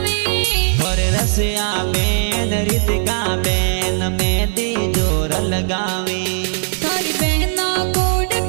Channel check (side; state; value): left; silent; 58 dB below the other